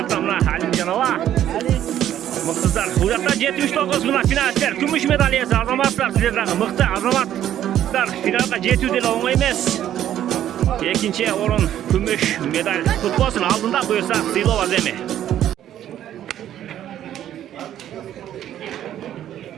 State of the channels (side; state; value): left; quieter; 11.4 dB